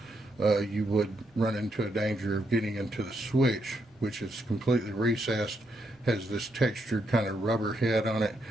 you would run into a danger of getting into the switch, which is completely recessed, has this textured kind of rubber head on it,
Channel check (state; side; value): normal; both; correlation 0.78